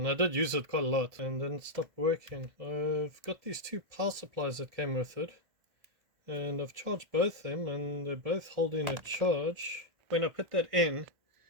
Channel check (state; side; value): late; left; 1.6 ms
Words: I did use it quite a lot, and then it stopped working. I've got these two power supplies that came with it, and I've charged both them, and they're both holding a charge. When I put that in,